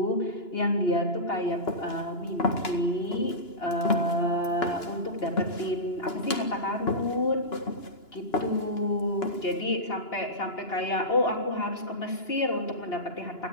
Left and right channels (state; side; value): late; right; 2.9 ms